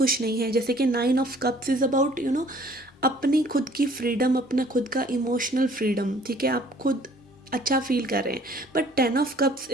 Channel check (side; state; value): both; normal; correlation 0.56